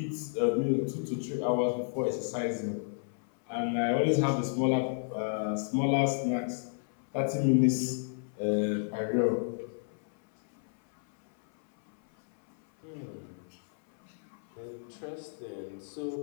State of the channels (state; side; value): silent; right; 57 dB below the other